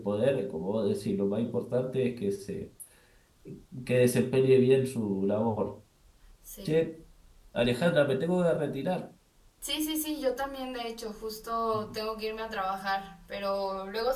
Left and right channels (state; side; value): identical; both; correlation 1.00